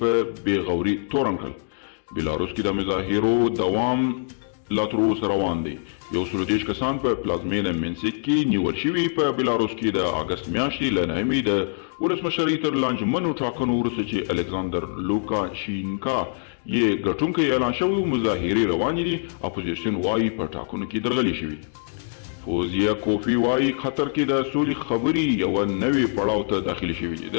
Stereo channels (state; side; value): silent; right; digital silence